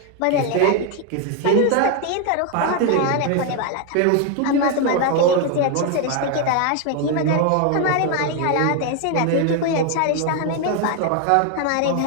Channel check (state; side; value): different; both; correlation 0.01